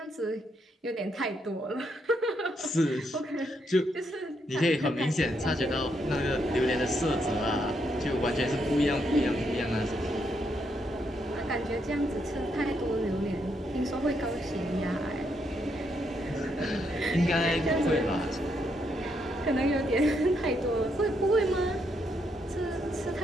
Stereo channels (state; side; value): normal; both; correlation 0.77